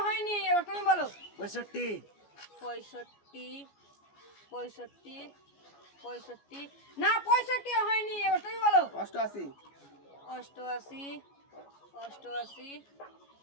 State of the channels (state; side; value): late; right; 14 ms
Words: হয়নি, এবার তুমি বলো। 65 65 65 65 না 65 হয়নি, এবার তুমি বলো। 88 88 88